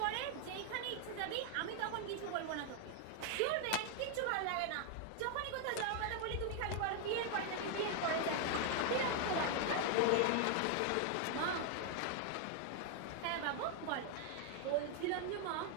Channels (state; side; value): different; both; correlation 0.00